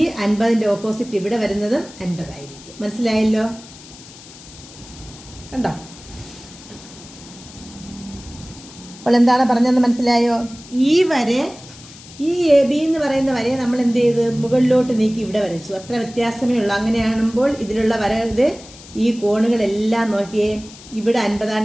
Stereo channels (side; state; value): left; noise; hiss, 19 dB below the sound